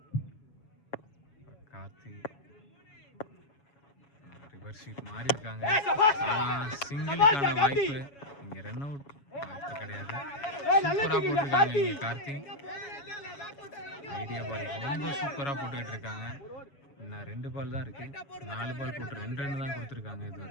கார்த்தி ரிவர்ஸ் ஷீட் மாறி இருக்காங்க. ஆனால் சிங்கிளுக்கான வாய்ப்பு. இங்கே ரன் அவுட் வாய்ப்பு கிடையாது. சூப்பராக போட்டிருக்காங்க இங்கே கார்த்தி. ஐடியா பால் ரொம்ப சூப்பராக போட்டுக்கிட்டு இருக்காங்க. இன்னும் 2 பால் தான் இருக்கு. 4 பால் போட்டு 2 ரன் தான் கொடுத்துருக்காங்க இது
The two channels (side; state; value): right; late; 7.2 ms